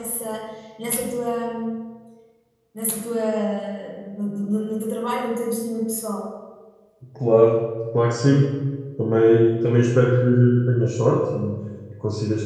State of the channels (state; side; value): identical; both; correlation 1.00